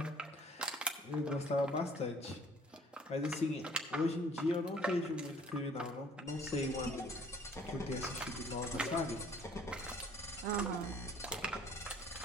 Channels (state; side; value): normal; both; correlation 0.56